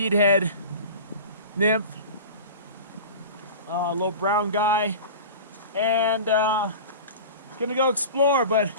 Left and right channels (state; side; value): inverted; both; correlation -0.35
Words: head nymph. Little brown guy, and gonna go explore, but